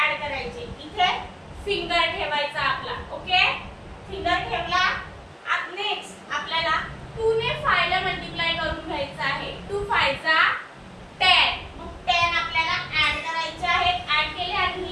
ऍड करायचे. इथे फिंगर ठेवायचा आपला. ओके, फिंगर ठेवला. नेक्स्ट आपल्याला 2 ने 5 ला मल्टिप्लाय करून घ्यायचं आहे. 2 5 जा 10. मग 10 आपल्याला ऍड करायचे आहेत. ऍड केले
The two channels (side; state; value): both; identical; correlation 1.00